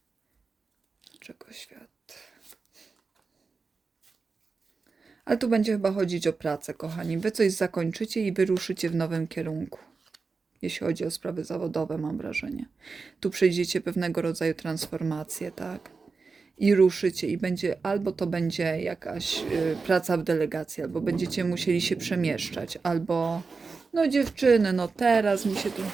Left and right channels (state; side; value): quieter; left; 4.5 dB